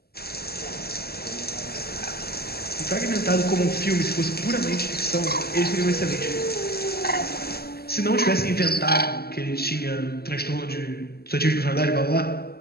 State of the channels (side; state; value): right; late; 0.46 ms